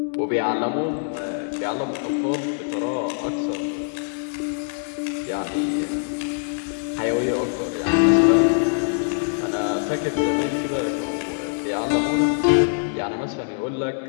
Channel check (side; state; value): right; silent; 63 dB below the other